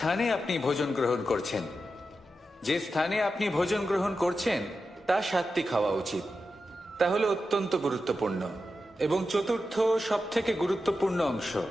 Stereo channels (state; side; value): normal; both; correlation 0.90